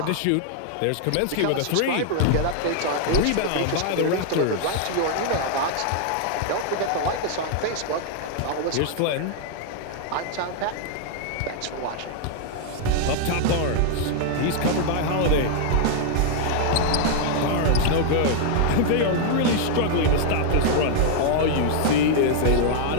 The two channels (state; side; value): different; both; correlation 0.00